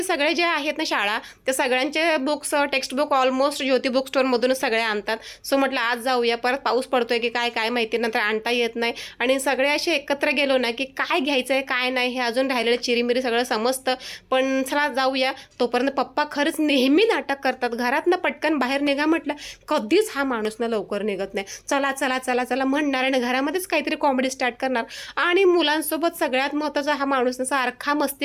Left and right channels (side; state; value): both; identical; correlation 1.00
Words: सगळे जे आहेत ना शाळा, त्या सगळ्यांचे बुक्स टेक्स्टबुक ऑलमोस्ट ज्योती बुक स्टोअरमधूनच सगळे आणतात. सो म्हटलं आज जाऊया. परत पाऊस पडतोय की काय काय माहिती, नंतर आणता येत नाही. आणि सगळे असे एकत्र गेलो ना की काय घ्यायचं आहे काय नाही हे अजून राहिलेलं चिरीमिरी सगळं समजतं. पण चला जाऊया. तोपर्यंत पप्पा खरंच नेहमी नाटक करतात. घरातनं पटकन बाहेर निघा म्हटलं, कधीच हा माणूस ना लवकर निघत नाही. चला चला चला चला म्हणणार आणि घरामध्येच काहीतरी कॉमेडी स्टार्ट करणार. आणि मुलांसोबत सगळ्यात महत्त्वाचा हा माणूस सारखा